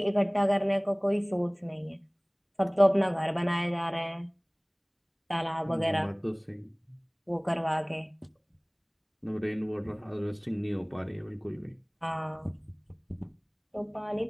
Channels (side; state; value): both; identical; correlation 1.00